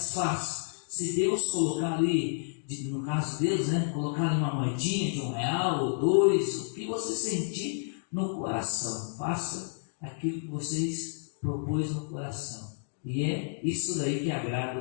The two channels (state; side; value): silent; right; digital silence